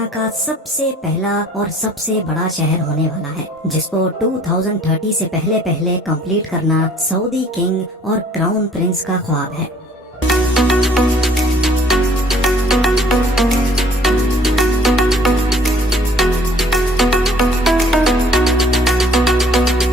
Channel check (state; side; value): normal; both; correlation 0.56